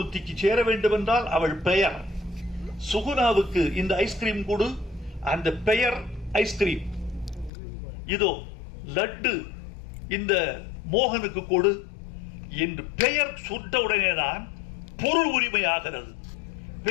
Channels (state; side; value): drops out; right; at 7.5 s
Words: சேர வேண்டும் என்றால் அவள் பெயர். சுகுணாவுக்கு இந்த ஐஸ்கிரீம் கொடு, அந்த பெயர் ஐஸ்கிரீம். இதோ லட்டு இந்த மோகனுக்கு கொடு என்று பெயர் சுட்ட உடனேதான் பொருள் உரிமையாகிறது.